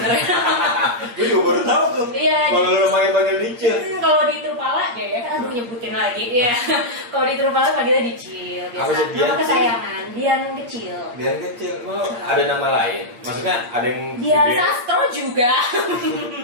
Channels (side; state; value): left; late; 8.4 ms